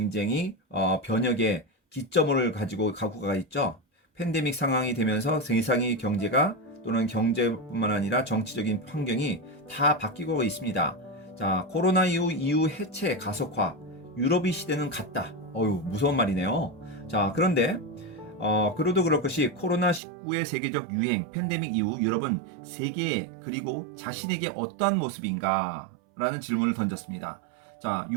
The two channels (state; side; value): drops out; left; at 20.0 s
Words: 변혁의 기점을 가지고 가고 가 있죠. 팬데믹 상황이 되면서 세상의 경제가 또는 경제뿐만 아니라 정치적인 환경이 다 바뀌고 있습니다. 자, 코로나 이후 해체 가속화, 유럽의 시대는 갔다. 어유 무서운 말이네요. 자, 그런데 그래도 그럴 것이 코로나19의 세계적 유행, 팬데믹 이후 유럽은 세계에 그리고 자신에게 어떠한 모습인가? 라는 질문을 던졌습니다. 자,